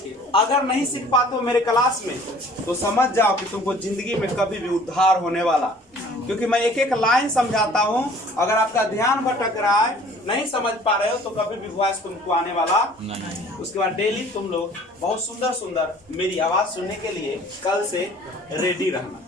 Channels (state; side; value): normal; both; correlation 0.52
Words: अगर नहीं सीख पाते हो मेरे क्लास में तो समझ जाओ कि तुमको जिंदगी में कभी भी उद्धार होने वाला, क्योंकि मैं एक एक लाइन समझाता हूँ। अगर आपका ध्यान भटक रहा है, नहीं समझ पा रहे हो, तो कभी भी वॉइस तुमको आने वाला नहीं। उसके बाद डेली तुम लोग बहुत सुंदर सुंदर मेरी आवाज सुनने के लिए कल से रेडी रहना।